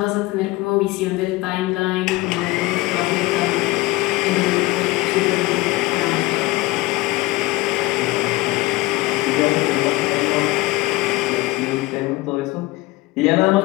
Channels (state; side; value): quieter; right; 20.2 dB